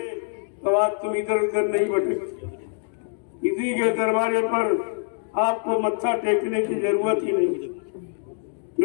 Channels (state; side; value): silent; right; digital silence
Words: तो आज तुम इधर उधर नहीं भटकते। इसी के दरबारे पर आपको मत्था टेकने की जरूरत ही नहीं,